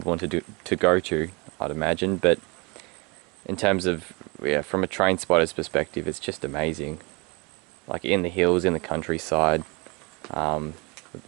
want to go to, I'd imagine. But in terms of, yeah, from a train spotter's perspective, it's just amazing. Like in the hills, in the countryside,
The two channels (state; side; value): quieter; left; 28.5 dB